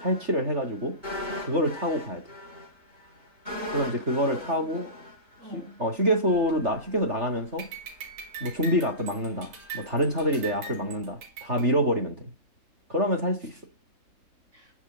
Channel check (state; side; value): late; left; 3.4 ms